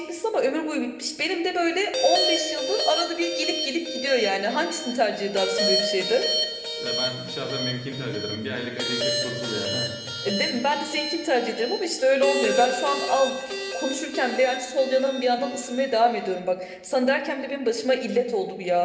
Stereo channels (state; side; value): identical; both; correlation 1.00